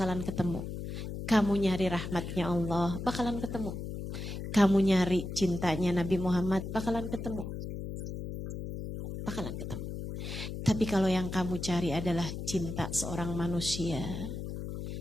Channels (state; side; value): noise; left; hum, 6 dB below the sound